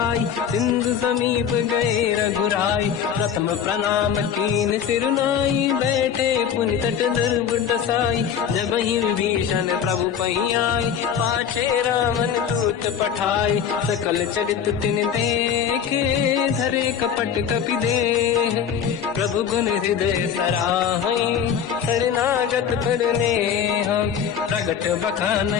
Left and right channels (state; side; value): quieter; right; 8.1 dB